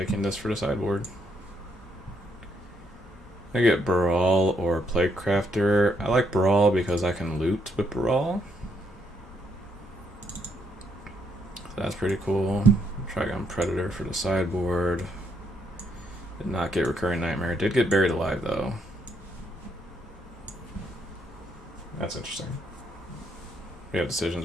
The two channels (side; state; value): both; normal; correlation 0.74